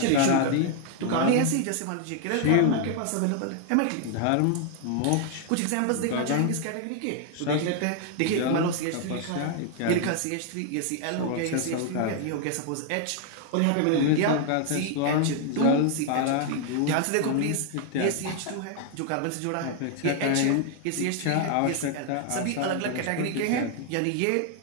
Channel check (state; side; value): different; both; correlation 0.00